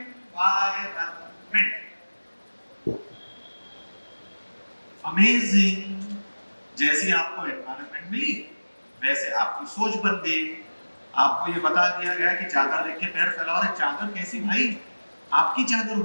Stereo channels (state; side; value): inverted; both; correlation -1.00